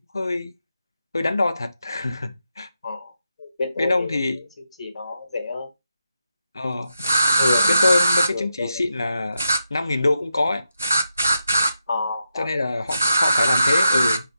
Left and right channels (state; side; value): inverted; both; correlation -0.85